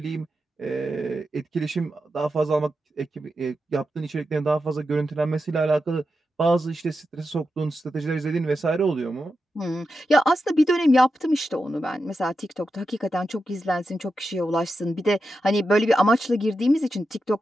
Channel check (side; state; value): both; normal; correlation 0.89